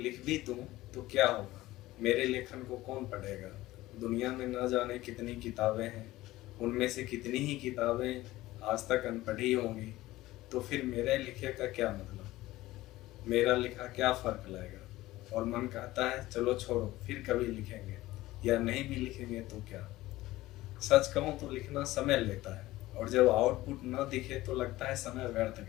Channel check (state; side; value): quieter; right; 17.3 dB